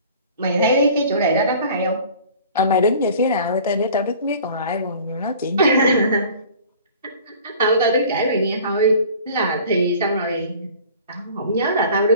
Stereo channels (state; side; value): inverted; both; correlation -0.46